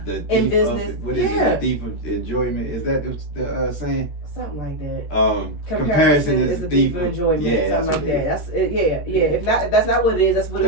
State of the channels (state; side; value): late; right; 13 ms